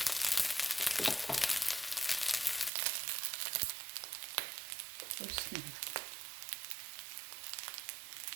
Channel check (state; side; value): drops out; left; at 2.7 s